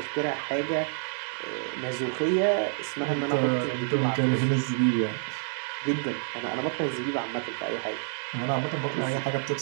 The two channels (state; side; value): silent; left; digital silence